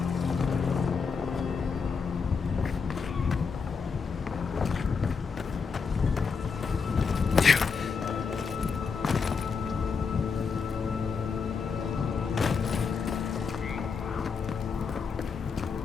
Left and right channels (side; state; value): right; quieter; 5.4 dB